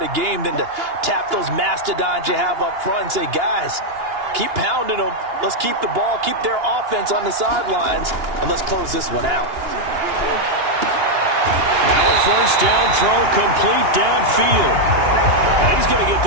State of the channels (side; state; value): left; late; 2.9 ms